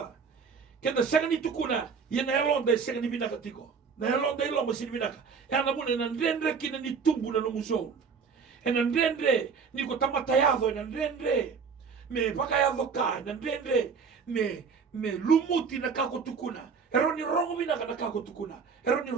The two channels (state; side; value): quieter; left; 5.8 dB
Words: Kenda senga ni tukuna, ye na elonda senga ni binaka tiko. Na elonda ilo mo sini binaka. E ana mune na ndendre kina ni tumbu na no musou. E na ndendre ni ko tamatayado, e na ndendre me pakayado ka, na ndendre me lumuti na kako tukuna. Ero ni rongo binaka na kako tukuna. Ero ni